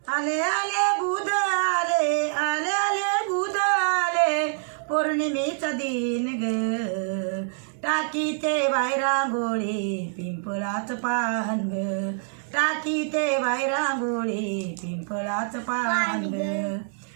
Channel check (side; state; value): left; silent; 61 dB below the other